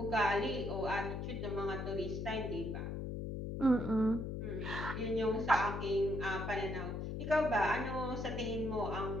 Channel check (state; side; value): noise; left; hum, 4 dB below the sound